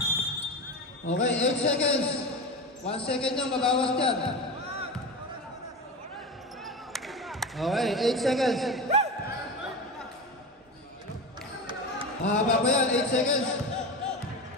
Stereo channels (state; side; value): normal; both; correlation 0.24